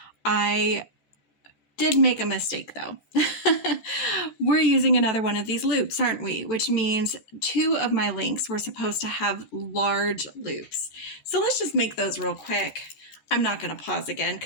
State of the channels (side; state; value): right; late; 14 ms